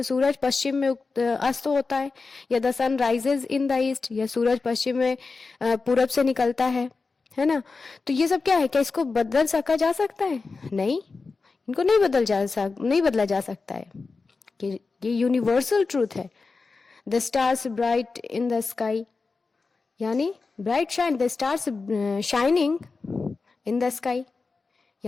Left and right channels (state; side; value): quieter; right; 4.2 dB